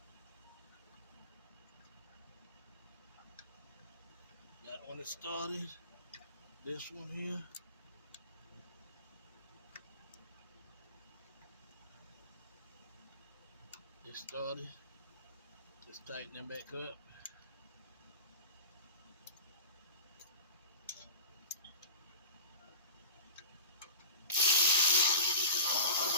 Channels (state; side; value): inverted; both; correlation -0.33